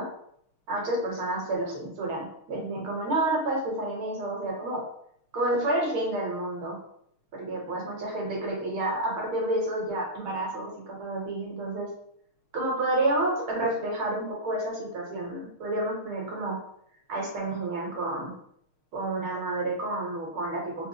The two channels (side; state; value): left; late; 6.4 ms